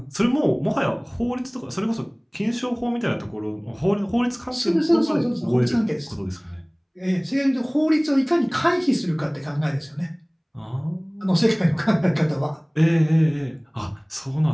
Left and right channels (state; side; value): identical; both; correlation 1.00